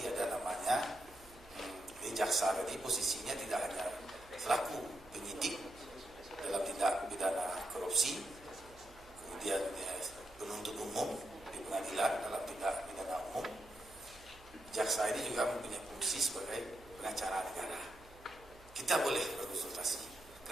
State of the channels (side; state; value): right; noise; hum, 22 dB below the sound